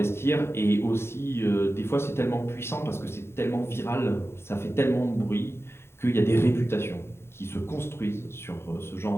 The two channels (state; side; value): late; right; 0.12 ms